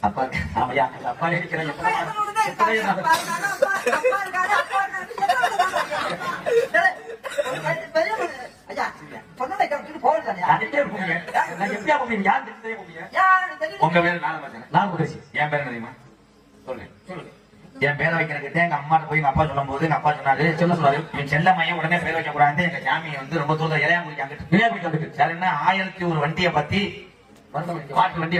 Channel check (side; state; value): both; identical; correlation 1.00